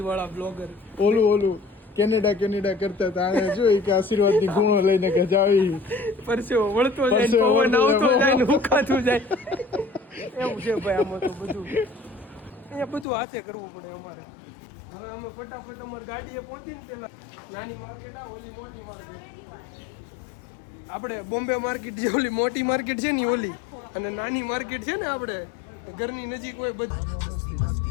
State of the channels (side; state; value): right; drops out; at 13.1 s